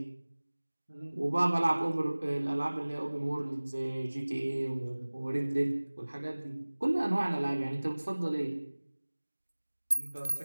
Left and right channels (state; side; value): inverted; both; correlation -1.00